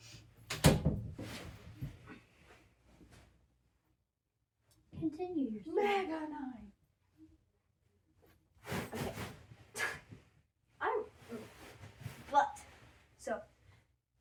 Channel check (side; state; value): both; identical; correlation 1.00